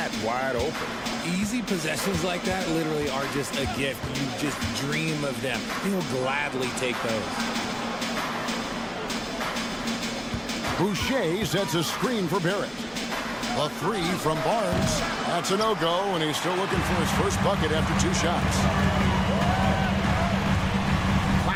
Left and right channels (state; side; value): identical; both; correlation 1.00